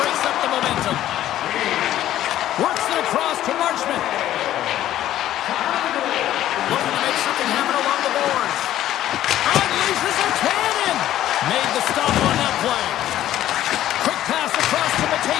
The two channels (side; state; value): right; quieter; 12.8 dB